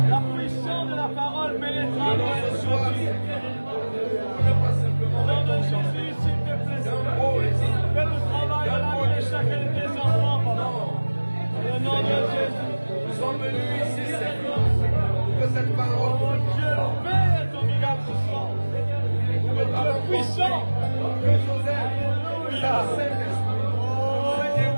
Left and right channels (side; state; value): both; inverted; correlation -1.00